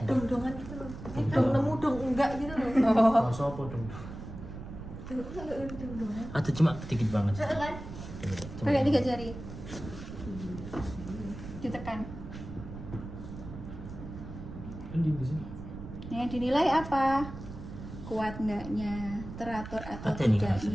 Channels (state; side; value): noise; right; rumble, 11 dB below the sound